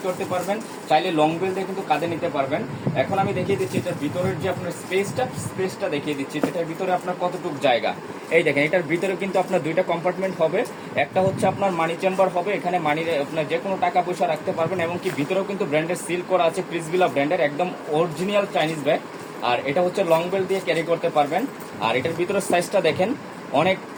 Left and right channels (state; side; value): identical; both; correlation 1.00